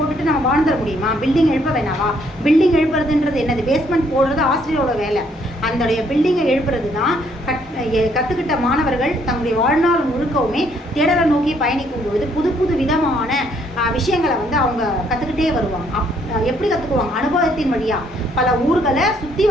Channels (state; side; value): normal; both; correlation 0.68